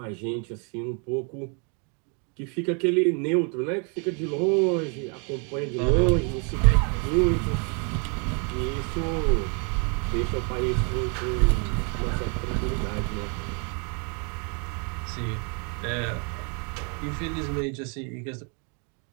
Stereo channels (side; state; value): left; quieter; 37.8 dB